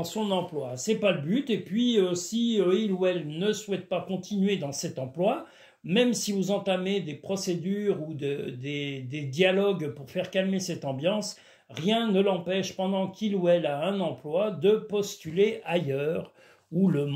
son emploi. C'est pas le but. Et puis si il ou elle ne souhaite pas continuer dans cet emploi, même si vous entamez des procédures ou des dialogues pour faire calmer cette ambiance, rien ne l'empêche, pendant qu'il ou elle a un emploi, de postuler ailleurs, où le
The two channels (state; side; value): identical; both; correlation 1.00